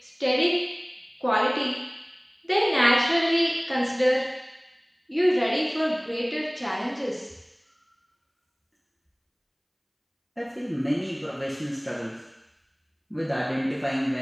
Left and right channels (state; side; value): identical; both; correlation 1.00